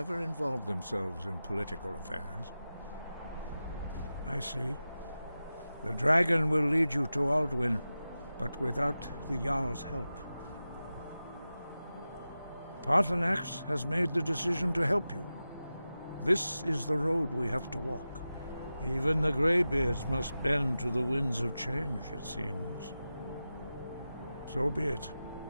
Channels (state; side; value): inverted; both; correlation -0.93